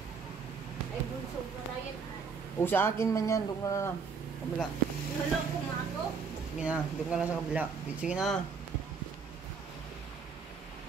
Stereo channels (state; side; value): quieter; left; 5.5 dB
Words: Ay, bunso pa na yan. O, sa akin man yan. Doon ka na lang. Kabila. Nalog ko nga ako. Sige na. Doon ka lang sa kabila. Sige na.